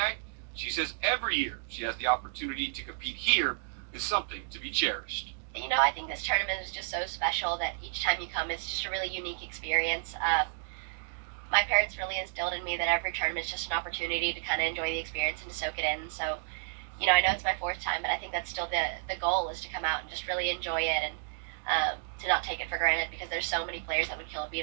she says every year she has the opportunity to compete here is something to be cherished. You know, I think this tournament is just so special that each time you come, it's just a really unique experience. My parents really instilled in me that every tournament is just an opportunity to kind of enjoy the experience and to soak it in. So, you know, I know it's my 4th time, but I think that's still the goal, is to come out and just really enjoy it and to not take it for granted, because there's so many players that would kill to be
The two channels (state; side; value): silent; left; digital silence